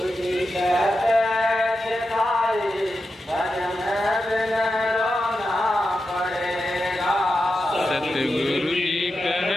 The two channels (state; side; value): normal; both; correlation 0.90